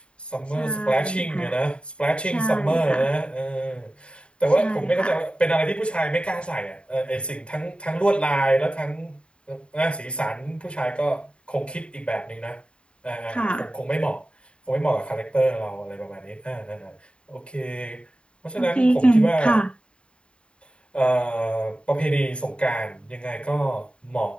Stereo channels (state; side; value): late; right; 0.055 ms